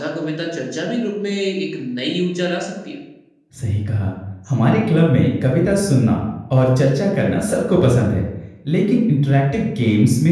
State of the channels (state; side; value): identical; both; correlation 1.00